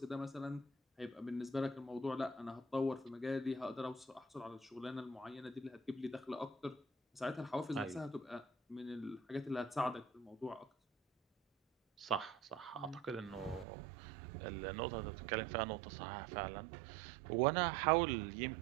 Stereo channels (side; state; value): left; drops out; at 13.7 s